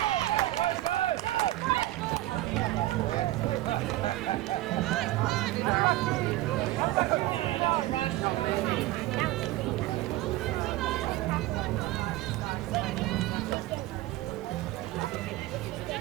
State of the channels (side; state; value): left; quieter; 16.8 dB